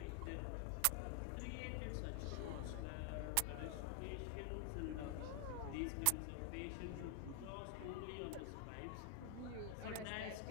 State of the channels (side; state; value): both; different; correlation 0.00